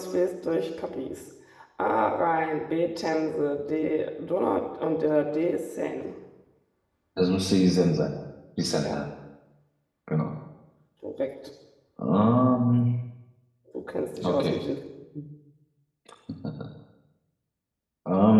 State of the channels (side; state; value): both; identical; correlation 1.00